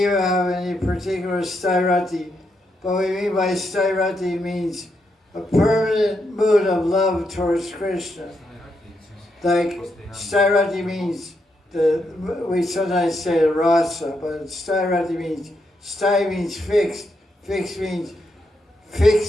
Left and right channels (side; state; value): both; normal; correlation 0.81